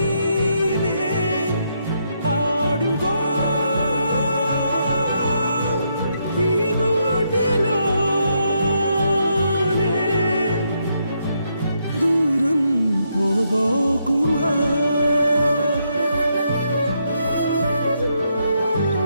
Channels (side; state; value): both; inverted; correlation -0.78